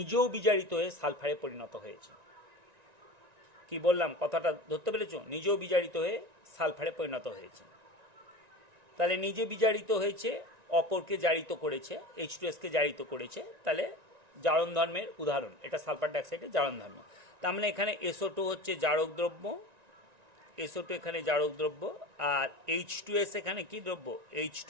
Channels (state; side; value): late; left; 1.9 ms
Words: বিজারিত হয়ে সালফারে পরিণত হয়েছে। কি বললাম, কথাটা ধরতে পেরেছো? নিজেও বিজারিত হয়ে সালফারে পরিণত হয়েছে। তাহলে নিজে বিজারিত হয়েছে, অপরকে জারিত করেছে, H2Sকে জারিত করেছে, তাহলে জারণ ধর্মের উদাহরণ এটা সালফার ডাইঅক্সাইডের জারণ ধর্ম। তার মানে এখানে SO2 হচ্ছে জারক দ্রব্য, SO2 এখানে জারক দ্রব্য, আর H2S এখানে কি দ্রব্য,